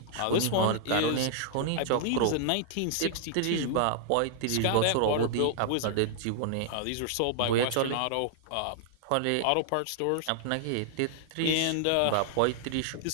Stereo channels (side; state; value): both; different; correlation -0.01